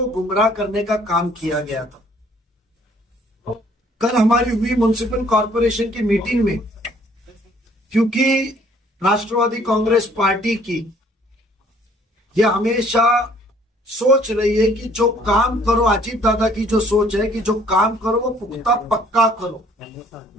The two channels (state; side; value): normal; both; correlation 0.60